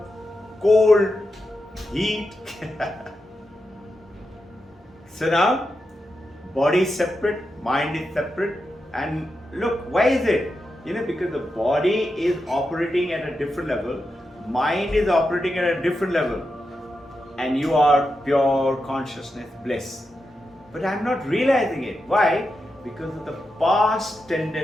cold, heat. So now, body is separate, mind is separate. And look, why is it? Because the body is operating at a different level, mind is operating at a different level, and you are pure consciousness, bliss. But I'm not realizing it. Why? Because of the past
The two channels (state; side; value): normal; both; correlation 0.88